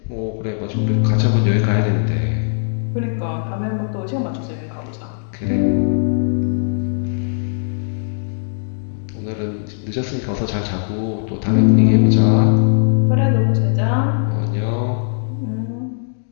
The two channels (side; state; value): right; silent; digital silence